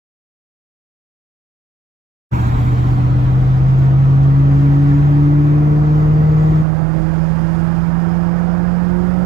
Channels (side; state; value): left; drops out; at 6.7 s